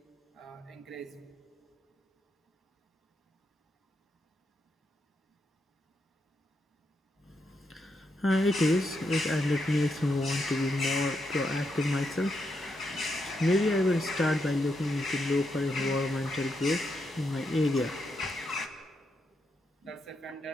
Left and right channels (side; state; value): both; normal; correlation 0.82